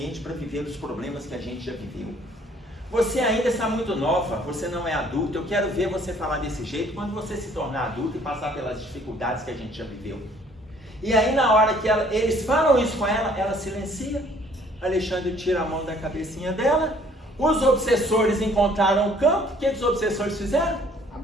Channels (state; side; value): normal; both; correlation 0.59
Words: para viver os problemas que a gente já viveu. Você ainda está muito nova, você não é adulta, eu quero ver você falar desse jeito quando você se tornar adulta e passar pelas dificuldades que a gente já viveu. E aí na hora que eles falam isso com ela, ela silencia, Alexandre tira a mão da cabecinha dela, os obsessores encontraram o campo, o que os obsessores fizeram?